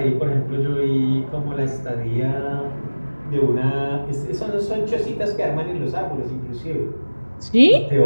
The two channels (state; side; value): inverted; both; correlation -1.00